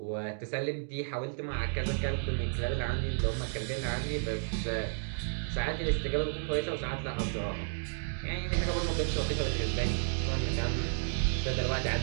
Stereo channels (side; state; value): left; silent; digital silence